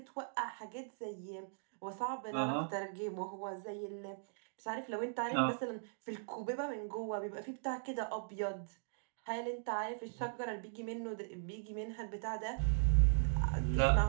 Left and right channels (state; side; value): silent; left; digital silence